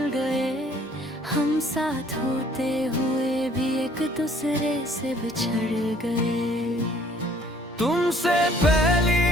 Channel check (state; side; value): normal; both; correlation 0.59